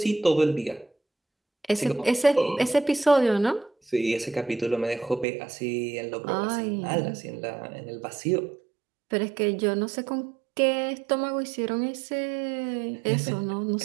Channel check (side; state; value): left; drops out; at 5.2 s